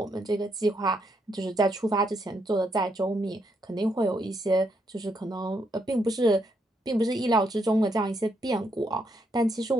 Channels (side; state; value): both; normal; correlation 0.77